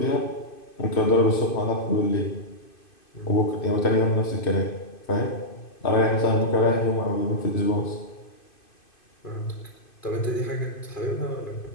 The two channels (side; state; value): right; late; 2.5 ms